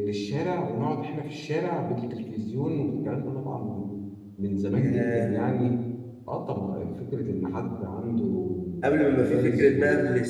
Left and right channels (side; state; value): both; identical; correlation 1.00